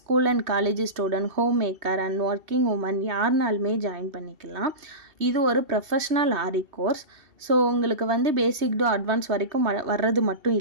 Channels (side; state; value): left; late; 3.2 ms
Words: and college student, home maker and working women யாருனாலுமே ஜாயின் பண்ணிக்கலாம். இது ஒரு ப்ரொஃபஷ்னல் ஆரி கோர்ஸ். ஸோ உங்களுக்கு வந்து பேசிக் டு அட்வான்ஸ் வரைக்கும் வர்றது மட்டும்